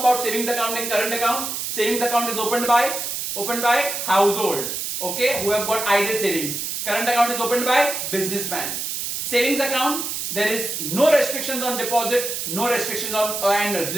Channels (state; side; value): noise; right; hiss, 4 dB below the sound